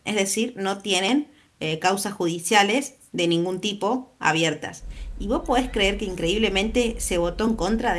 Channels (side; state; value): both; identical; correlation 1.00